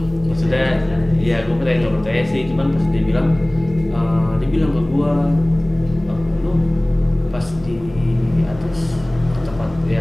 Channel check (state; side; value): noise; left; hum, 19 dB below the sound